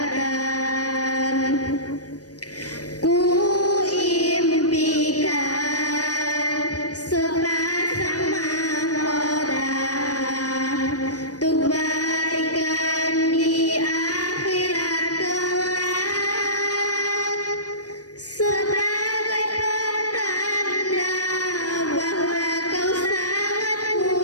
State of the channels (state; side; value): late; right; 0.68 ms